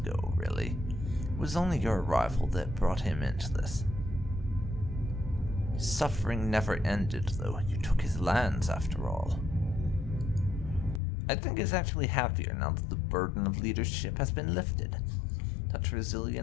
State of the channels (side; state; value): right; drops out; at 11.0 s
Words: really. It was only your arrival that brought him into this. His suffering never ended, though. You took his lands, after all. I think he's actually happier now that the burden of leadership has been lifted. Such